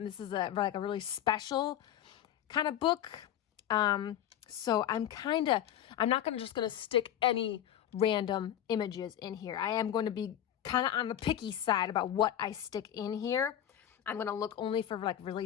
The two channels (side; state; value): right; quieter; 11.0 dB